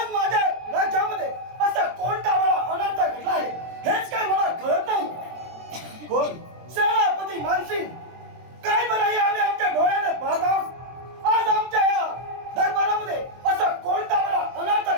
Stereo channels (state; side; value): late; left; 23 ms